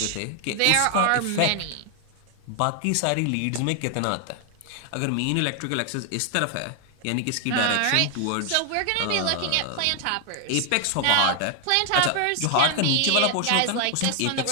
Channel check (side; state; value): both; different; correlation 0.00